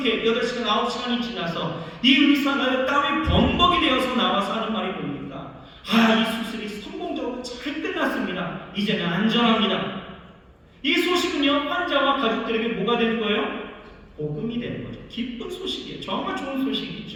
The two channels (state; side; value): identical; both; correlation 1.00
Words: 8시간, 9시간이 지나서 이 의사가 땀이 범벅이 되어서 나와서 하는 말이 뭡니까? 이 수술이 성공적으로 잘 끝났습니다. 이제는 안전합니다. 이 소식은요, 환자와 가족들에게 뭐가 되는 거예요? 복음이 되는 거죠. 기쁜 소식이에요. 정말 좋은